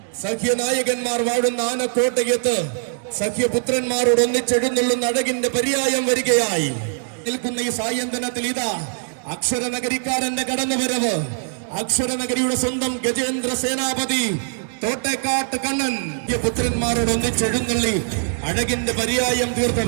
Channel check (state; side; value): silent; left; digital silence